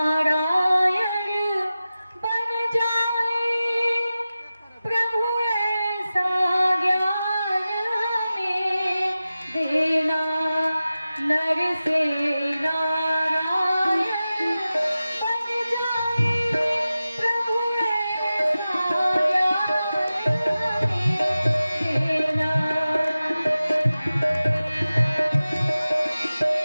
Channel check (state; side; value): inverted; both; correlation -0.95